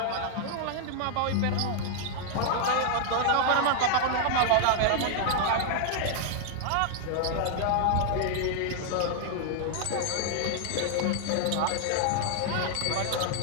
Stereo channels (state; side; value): different; both; correlation 0.00